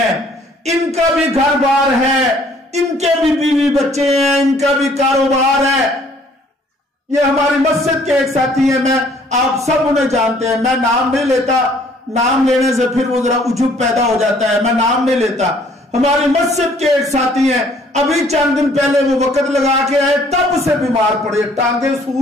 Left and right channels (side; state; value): both; normal; correlation 0.60